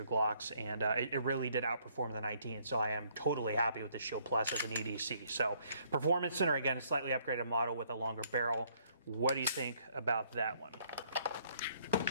Glocks, and it really did outperform the 19. So I am totally happy with the Shield Plus as an EDC. So Performance Center, again, a slightly upgraded model with a longer barrel. What do you think about that one?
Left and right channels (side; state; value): both; inverted; correlation -0.65